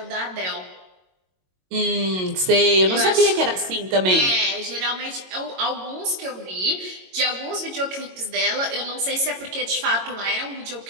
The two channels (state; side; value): late; left; 22 ms